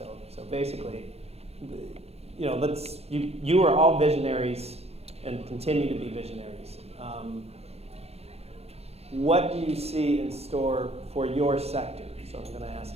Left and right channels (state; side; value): late; left; 0.30 ms